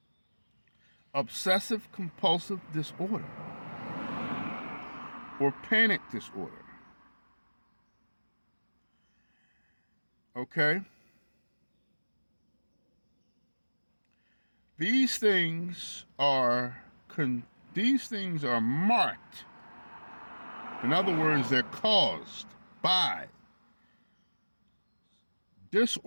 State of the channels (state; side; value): inverted; both; correlation -1.00